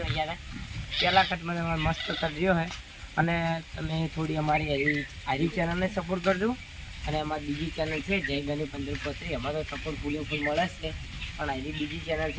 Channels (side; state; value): both; identical; correlation 1.00